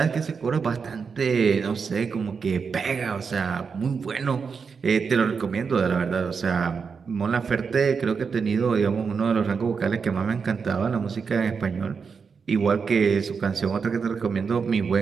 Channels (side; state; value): left; quieter; 5.7 dB